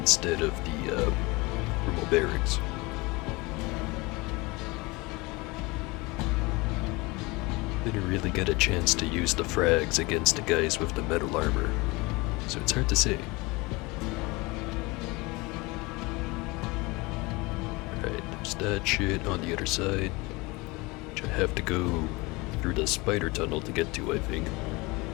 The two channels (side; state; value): right; quieter; 24.3 dB